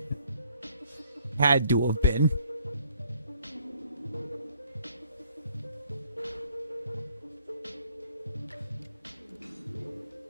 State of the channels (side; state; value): both; inverted; correlation -0.63